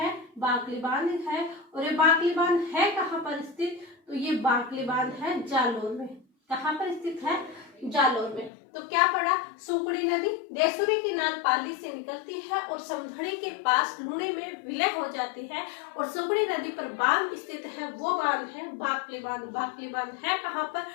बाकली बांध है। और ये बाकली बांध है कहाँ पर स्थित? तो ये बाकली बांध है जालोर में। कहाँ पर स्थित है? जालोर में। तो क्या पढ़ा? सुकड़ी नदी देसूरी की नाल पाली से निकलती है और समदड़ी के पास लूणी में विलय हो जाती है, और सुकड़ी नदी पर बांध स्थित है, वो बांध है बाकली बांध। बाकली बांध है कहाँ पर?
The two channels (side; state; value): right; drops out; at 8.5 s